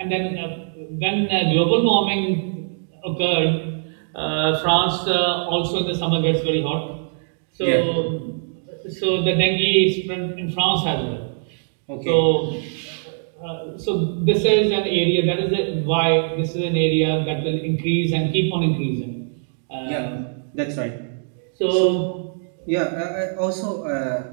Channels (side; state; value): left; silent; digital silence